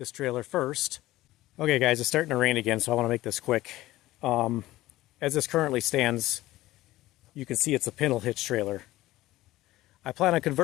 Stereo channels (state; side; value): quieter; right; 16.7 dB